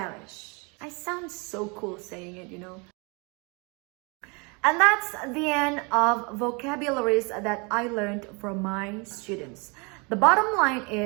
I sound so cool saying it, you know. And that's the end of vocabularies that I learned from my students. The bottom line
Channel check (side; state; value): left; quieter; 30.6 dB